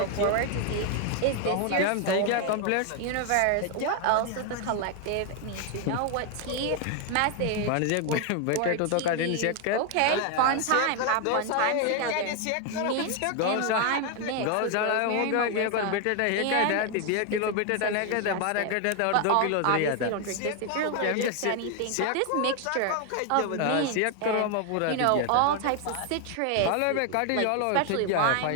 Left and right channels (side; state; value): both; different; correlation 0.01